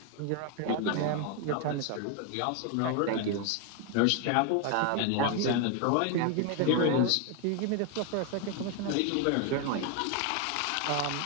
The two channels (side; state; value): both; different; correlation 0.01